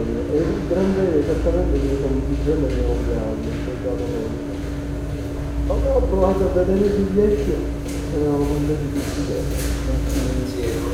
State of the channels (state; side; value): identical; both; correlation 1.00